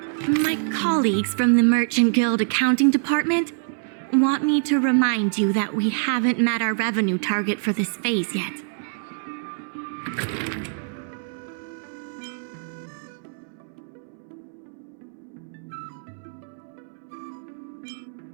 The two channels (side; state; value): left; silent; 62 dB below the other